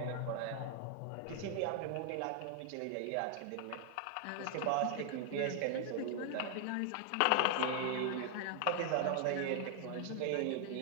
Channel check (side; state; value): both; different; correlation 0.00